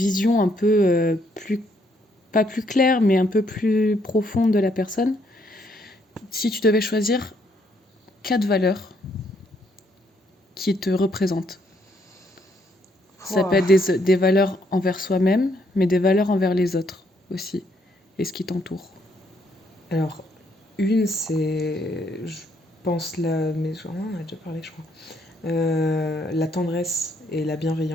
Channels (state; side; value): normal; both; correlation 0.71